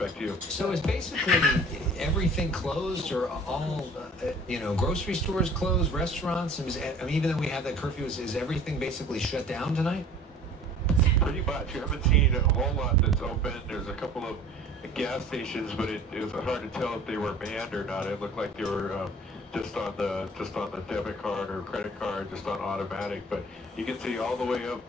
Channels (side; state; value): both; normal; correlation 0.48